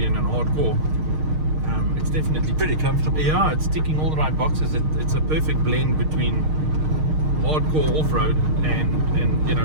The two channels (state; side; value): late; left; 6.5 ms